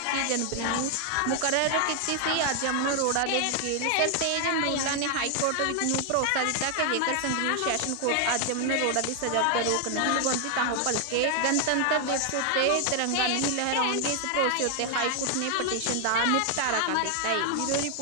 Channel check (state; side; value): different; both; correlation 0.00